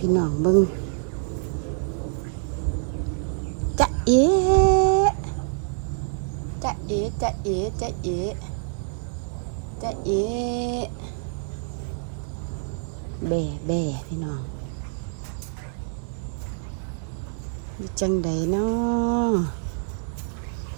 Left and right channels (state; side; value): silent; left; digital silence